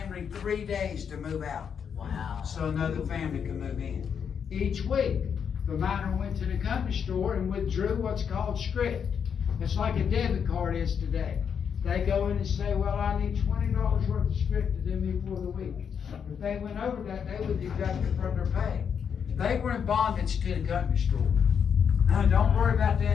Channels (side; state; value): right; quieter; 7.3 dB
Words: 3 days to move out. Wow. So another family could move in. Each week, the miner went to the company store and withdrew what's called script. It's like a debit card is today. They go in and say, well, I need $20 worth of script to do me for the week. If they went over that, they would deduct it from their pay. They were in bondage to the company store. Now, don't worry about